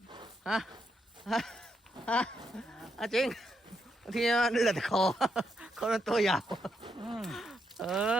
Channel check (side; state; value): both; normal; correlation 0.80